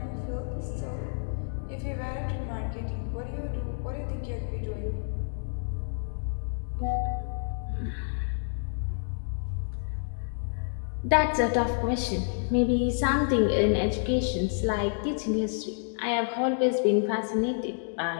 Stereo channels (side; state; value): right; silent; digital silence